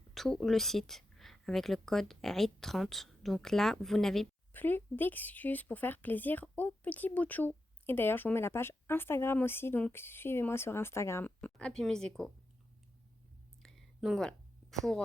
tout le site avec le code EID30. Donc là, vous n'avez plus d'excuses pour faire plaisir aux petits bout de chou. Et d'ailleurs, je vous mets la page Instagram aussi, donc suivez-moi sur Instagram, Happy Museco. Donc voilà,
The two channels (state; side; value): normal; both; correlation 0.88